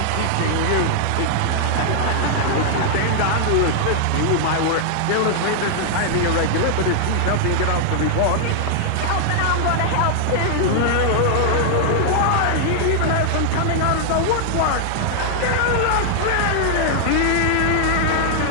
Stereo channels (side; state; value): both; different; correlation -0.01